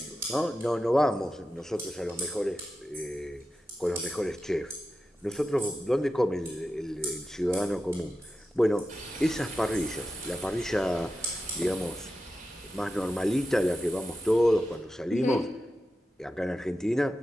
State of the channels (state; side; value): normal; both; correlation 0.91